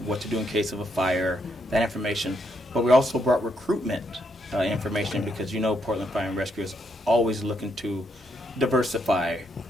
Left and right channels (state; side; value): normal; both; correlation 0.77